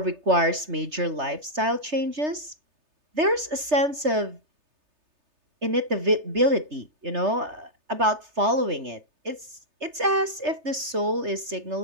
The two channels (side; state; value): left; late; 3.3 ms